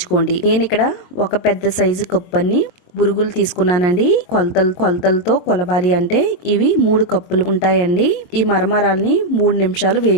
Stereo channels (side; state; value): right; late; 22 ms